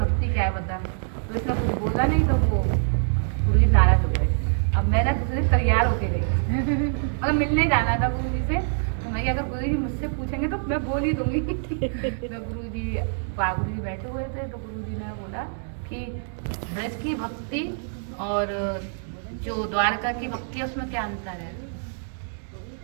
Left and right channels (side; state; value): left; silent; digital silence